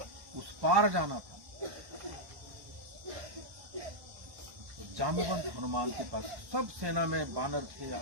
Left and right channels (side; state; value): left; late; 1.1 ms